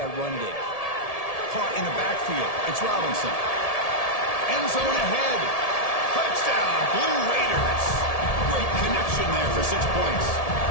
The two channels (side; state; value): right; late; 1.7 ms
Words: run game. Caught in the backfield. It's Robinson. End zone ahead. Touchdown, Blue Raiders. Great connection there for 6 points.